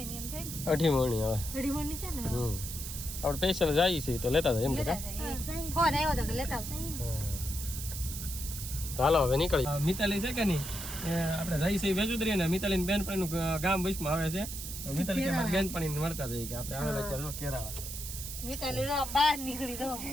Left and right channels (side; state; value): right; noise; hiss, 7 dB below the sound